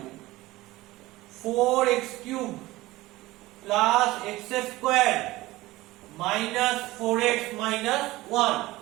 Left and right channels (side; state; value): left; quieter; 18.6 dB